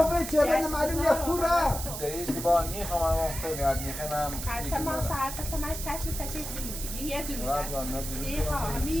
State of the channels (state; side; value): noise; right; hiss, 7 dB below the sound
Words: چه غیر معلوم یه کوره دریش که با نیخوام من مختونی از نیخوام حرف ما ساعت تا ماش تچ یه درو یه ها